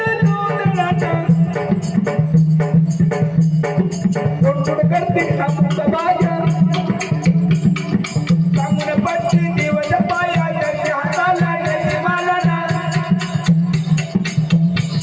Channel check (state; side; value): identical; both; correlation 1.00